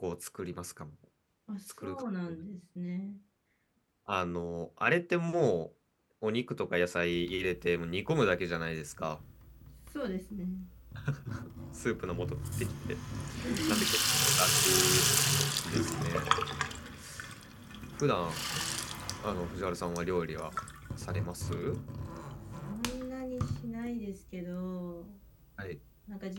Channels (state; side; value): identical; both; correlation 1.00